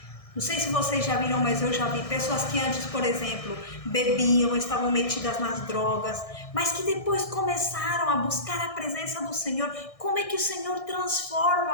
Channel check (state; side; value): late; right; 1.6 ms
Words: não sei se vocês já viram, mas eu já vi pessoas que antes, por exemplo, bebiam, estavam metidas nas drogas, mas que depois começaram a buscar a presença do Senhor. Como é que o Senhor transforma